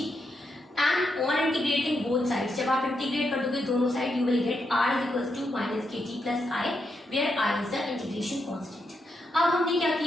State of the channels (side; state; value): both; normal; correlation 0.82